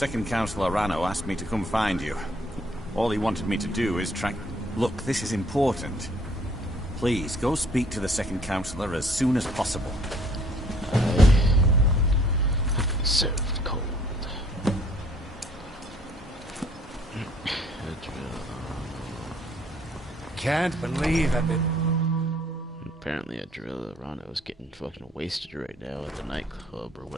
Councillor Rano asked me to come find you. All he wanted me to do is track... Look, this is important. Please, go speak to the Second Councillor as soon as possible. Served cold. Can't believe I've been... Apparently Adriano is getting fucking wasted right now at the nightclub or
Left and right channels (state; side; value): normal; both; correlation 0.60